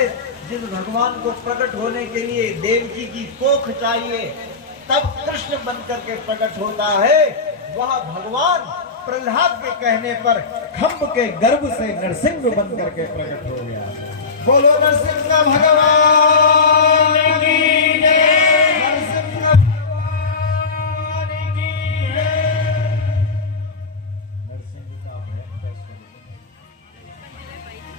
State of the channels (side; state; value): right; quieter; 4.3 dB